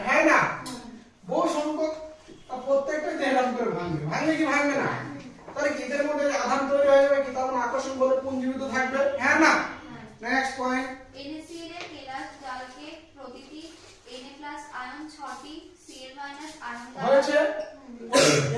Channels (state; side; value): identical; both; correlation 1.00